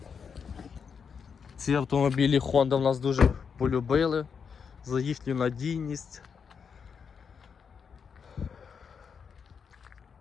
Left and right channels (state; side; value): quieter; right; 6.4 dB